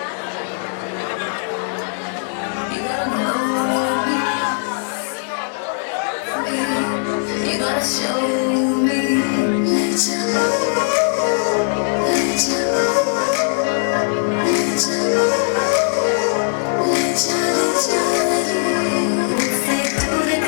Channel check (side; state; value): right; silent; digital silence